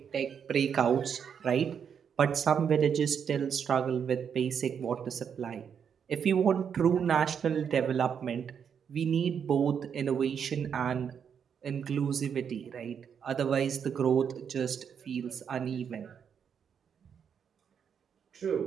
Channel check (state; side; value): quieter; left; 7.5 dB